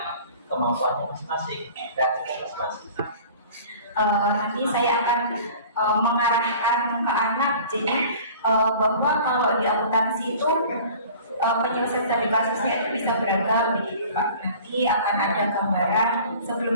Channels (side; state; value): both; inverted; correlation -0.45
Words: kemampuannya masing-masing, kreativitas masing-masing. Nanti saya akan mengarahkan ke anak, jadi bahwa kalau di akuntansi itu penyelesaian studi kasusnya itu bisa beragam begitu Pak. Nanti akan ada gambaran